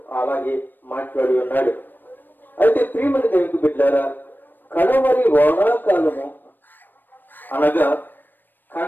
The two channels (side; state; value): right; late; 0.092 ms